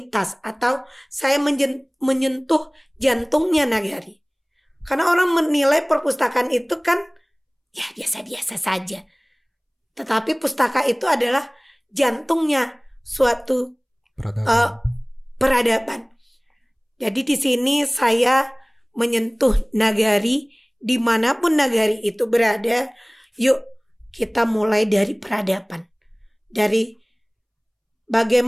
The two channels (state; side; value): identical; both; correlation 1.00